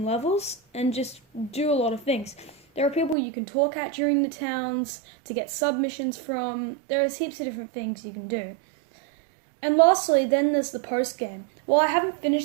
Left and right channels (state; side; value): drops out; left; at 3.2 s